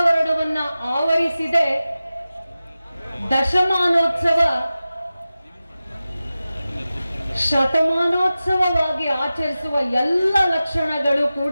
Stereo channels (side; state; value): both; inverted; correlation -0.95